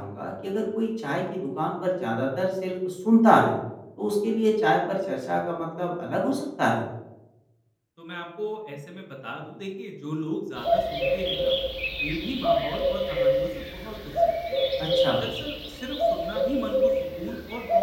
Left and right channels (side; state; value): both; identical; correlation 1.00